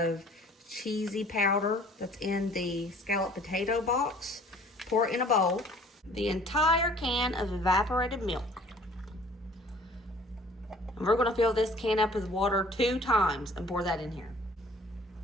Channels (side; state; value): both; normal; correlation 0.52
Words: cheesy powder that's in the scalloped potato box. Pour it in a bowl. The entire can of evaporated milk. And we're going to fill this can up with water 2 times and pour that in here.